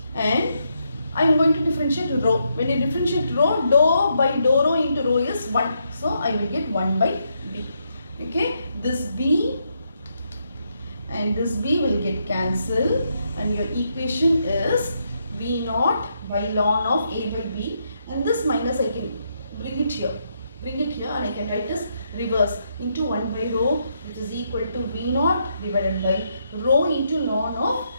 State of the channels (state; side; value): inverted; both; correlation -0.78